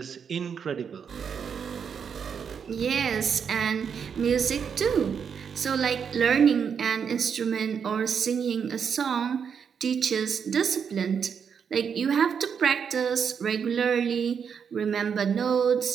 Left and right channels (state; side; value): quieter; left; 7.0 dB